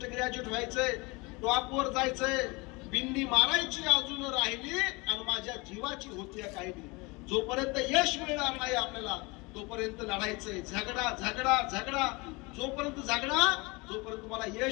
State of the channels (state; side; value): quieter; right; 26.0 dB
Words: ग्रॅज्युएट व्हायचंय, टॉपवर जायचंय. बिंदी मारायची अजून राहिली आणि माझ्या जीवाची होती काही. जोपर्यंत यश मिळणार नाही आपल्याला तोपर्यंत लढायचंय. झगडा झगडा झगडा, जोपर्यंत झगडा जोपर्यंत तुम्हाला